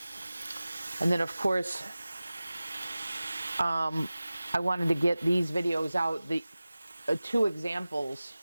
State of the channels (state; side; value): inverted; both; correlation -0.97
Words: And then of course, I wanted to get these videos out, the 2 examples,